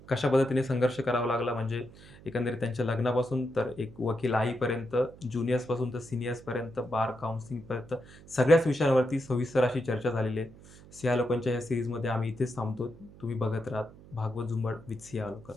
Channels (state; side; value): noise; right; hum, 20 dB below the sound